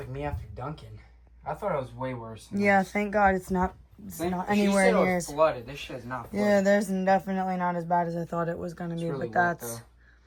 me after dunking. I thought it was way worse. Yeah, thank God it's not anywhere near She as... said it was flooded. This shit is not flooded. Yeah, there's definitely not as bad as I thought it was gonna be, really but that's... wet,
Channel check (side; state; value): both; identical; correlation 1.00